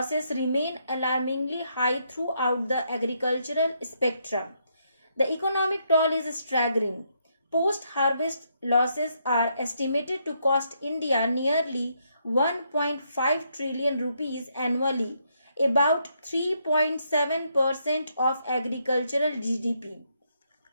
remain alarmingly high throughout the agricultural spectrum. The economic toll is staggering. Post-harvest losses are estimated to cost India nearly 1.5 trillion rupees annually, about 3.7% of agricultural GDP.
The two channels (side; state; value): both; inverted; correlation -0.76